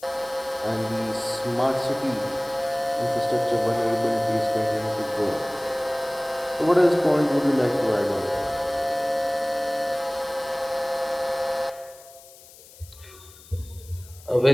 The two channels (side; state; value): left; noise; hiss, 22 dB below the sound